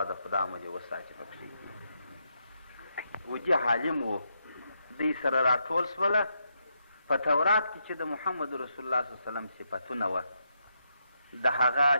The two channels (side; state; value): both; inverted; correlation -0.80